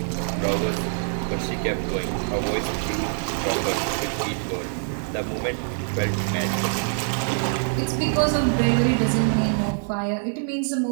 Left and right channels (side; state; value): left; silent; digital silence